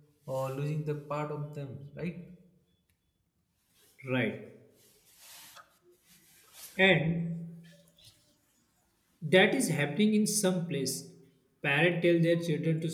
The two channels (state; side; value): identical; both; correlation 1.00